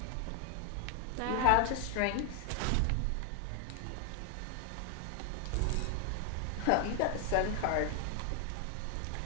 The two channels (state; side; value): different; both; correlation 0.00